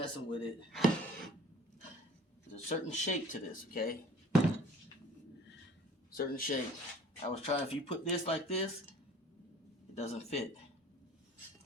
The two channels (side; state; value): both; normal; correlation 0.47